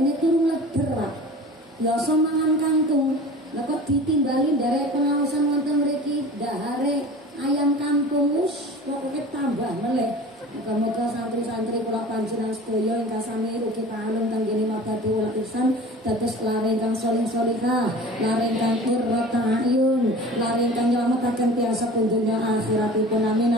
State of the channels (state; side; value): normal; both; correlation 0.40